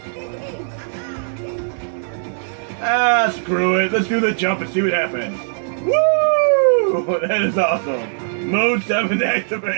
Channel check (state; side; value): silent; left; digital silence